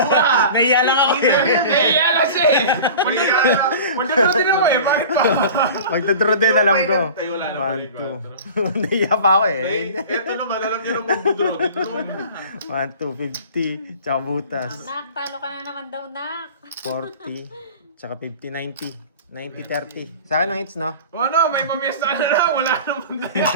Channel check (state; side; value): inverted; both; correlation -0.38